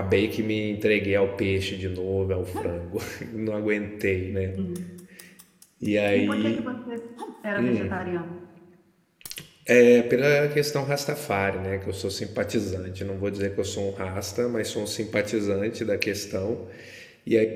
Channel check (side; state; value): both; identical; correlation 1.00